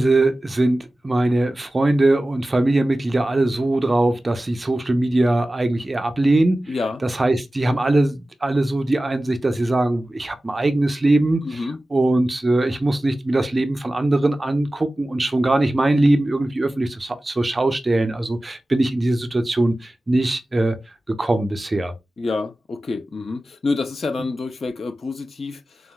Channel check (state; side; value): normal; both; correlation 0.96